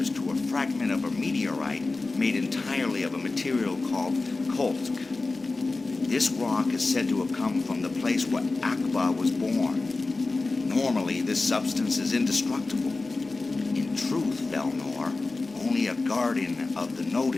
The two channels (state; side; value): quieter; right; 3.5 dB